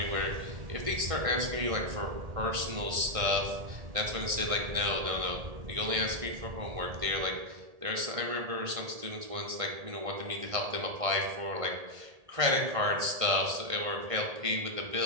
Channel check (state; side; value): late; left; 1.6 ms